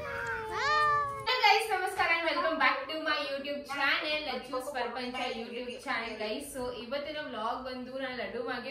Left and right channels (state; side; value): identical; both; correlation 1.00